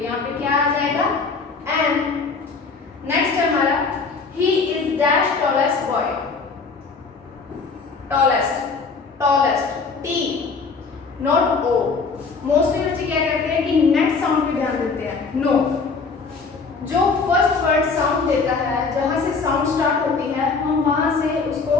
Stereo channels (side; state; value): right; quieter; 4.6 dB